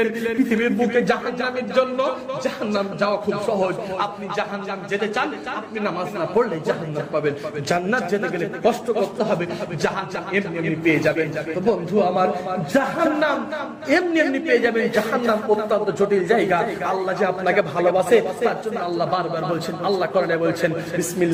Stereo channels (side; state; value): both; identical; correlation 1.00